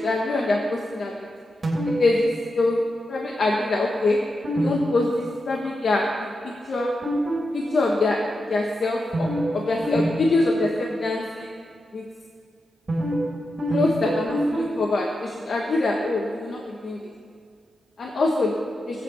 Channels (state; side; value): normal; both; correlation 0.88